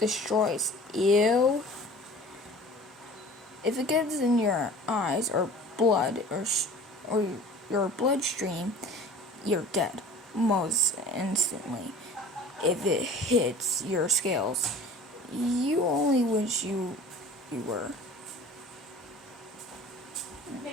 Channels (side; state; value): both; normal; correlation 0.43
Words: Ew. If it gets in your eyes or blood or your bloodstream, you're dead most instantly. If it hits your scales, you only wish you were.